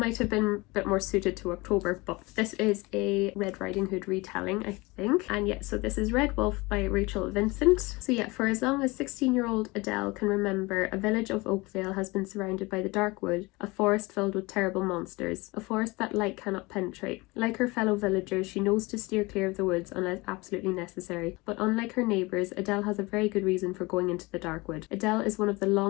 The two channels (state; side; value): quieter; right; 23.7 dB